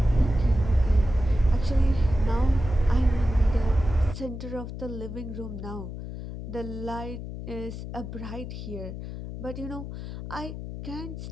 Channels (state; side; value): noise; left; hum, 9 dB below the sound